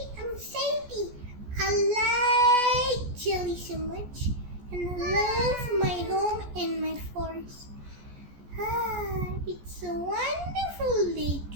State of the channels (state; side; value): late; left; 14 ms